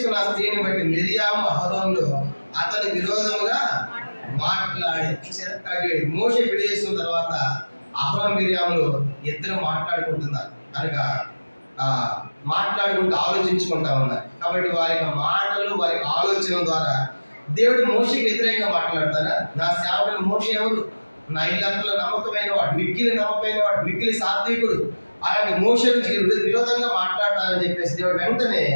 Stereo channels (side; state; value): both; inverted; correlation -1.00